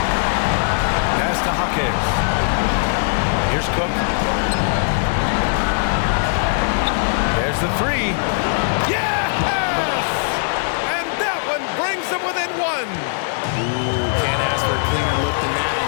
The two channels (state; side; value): silent; right; digital silence